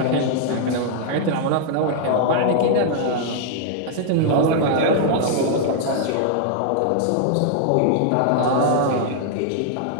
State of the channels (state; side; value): different; both; correlation -0.01